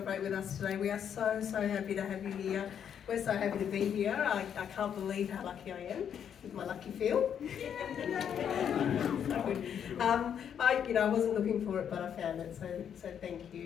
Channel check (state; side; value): quieter; right; 8.5 dB